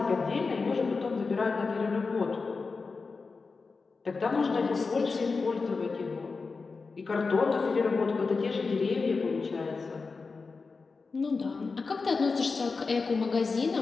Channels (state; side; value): quieter; right; 4.4 dB